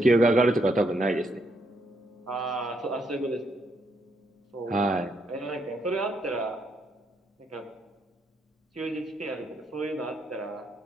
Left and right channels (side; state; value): both; normal; correlation 0.76